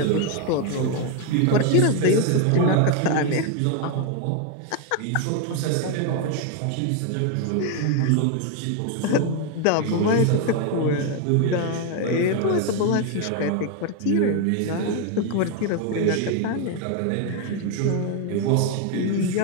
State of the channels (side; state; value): both; different; correlation 0.01